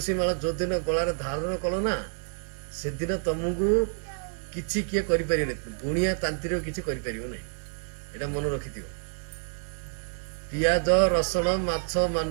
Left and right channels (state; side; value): silent; left; 59 dB below the other